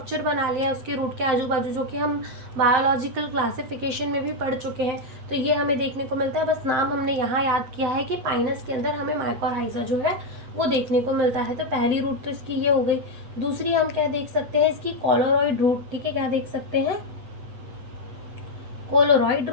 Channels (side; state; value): left; late; 8.2 ms